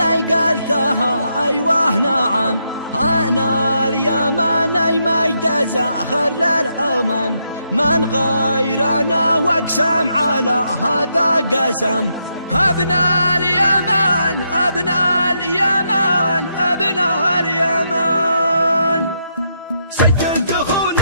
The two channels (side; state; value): both; inverted; correlation -0.79